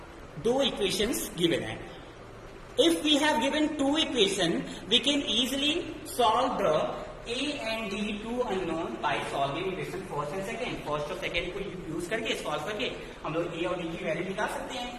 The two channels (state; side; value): identical; both; correlation 1.00